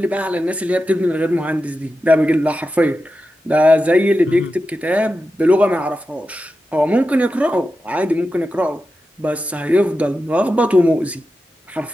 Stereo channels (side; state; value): both; normal; correlation 0.91